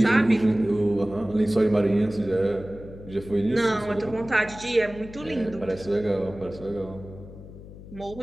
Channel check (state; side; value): noise; left; hum, 16 dB below the sound